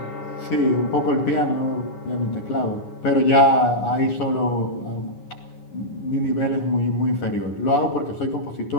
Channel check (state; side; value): late; right; 9.7 ms